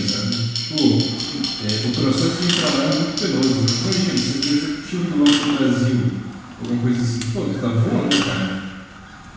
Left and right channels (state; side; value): identical; both; correlation 1.00